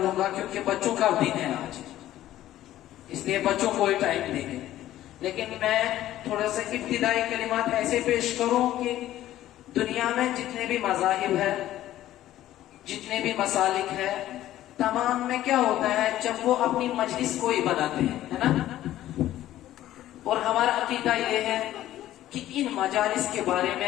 क्योंकि बच्चों का दिन है आज, इसलिए बच्चों को ही टाइम देंगे। लेकिन मैं थोड़ा सा इब्तिदाई कलिमात ऐसे पेश करूं कि दुनिया में जितने भी मज़ाहिब है, जितने भी मसालिक है, तमाम में क्या होता है, जब वो अपनी मजलिस को ही बनाते हैं, है ना। और हमारा अकीदा ये है कि इन मजालिस के बारे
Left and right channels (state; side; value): quieter; right; 13.6 dB